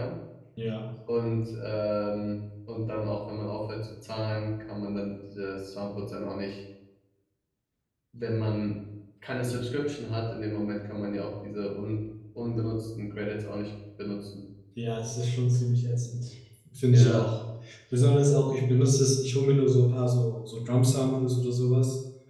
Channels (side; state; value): both; identical; correlation 1.00